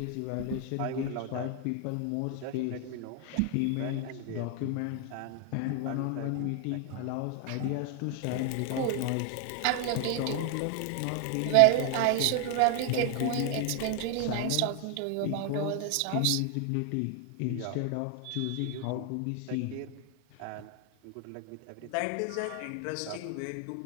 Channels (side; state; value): both; different; correlation 0.00